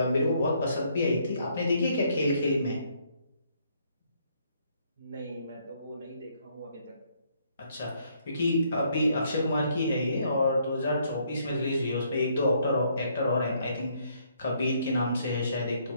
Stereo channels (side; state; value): both; inverted; correlation -0.69